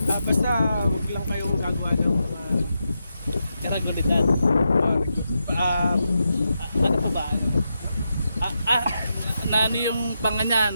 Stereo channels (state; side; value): inverted; both; correlation -0.86